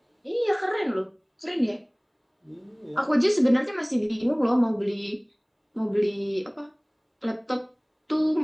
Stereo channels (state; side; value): identical; both; correlation 1.00